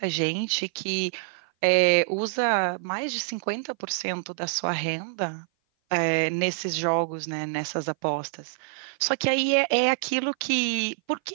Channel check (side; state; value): left; silent; 56 dB below the other